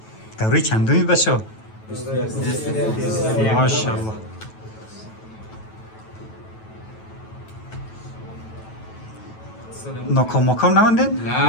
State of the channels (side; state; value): right; late; 9.2 ms